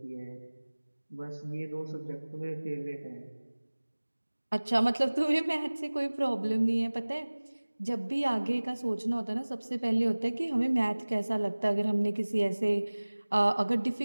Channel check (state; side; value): inverted; both; correlation -1.00